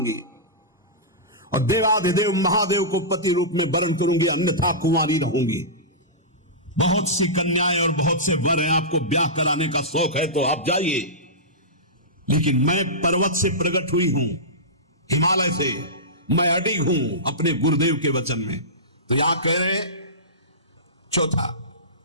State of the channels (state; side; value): normal; both; correlation -0.18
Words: और देवाधिदेव महादेव को पति रूप में वरण करूंगी, अन्यथा कुंवारी रहूंगी। बहुत सी कन्याएं और बहुत से वर हैं, आपको ब्याह कराने का शौक है तो आप जाइए, लेकिन मैं पर्वत से प्रकट हुई हूं, हिमालय से, मैं अडिग हूं अपने गुरुदेव के वचन में। तो यहां कह रहे चौथा,